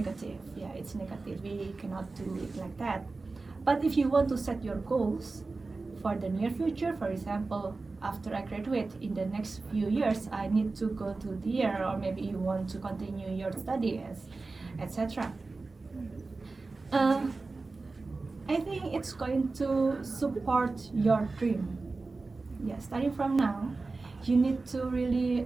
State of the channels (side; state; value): left; quieter; 3.7 dB